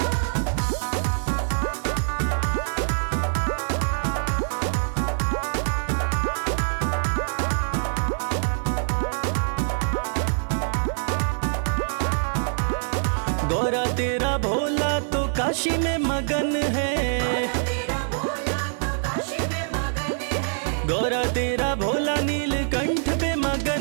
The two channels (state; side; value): silent; left; 62 dB below the other